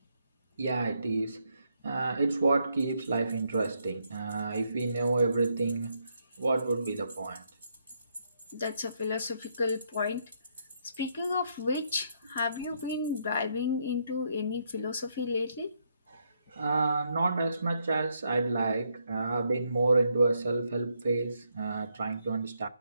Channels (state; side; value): inverted; both; correlation -0.76